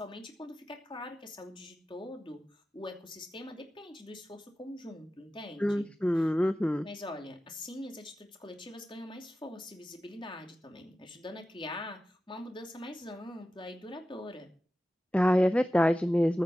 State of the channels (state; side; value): normal; both; correlation 0.94